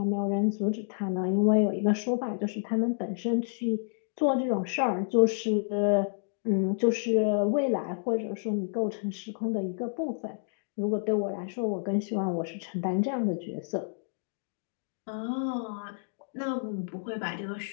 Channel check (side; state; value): right; silent; digital silence